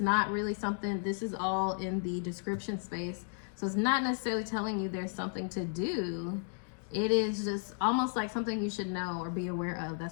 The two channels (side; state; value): right; silent; 55 dB below the other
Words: really something, this is all in the description space. So it's not necessarily telling you there's something to do. It is just almost like something you should know or be aware of. That's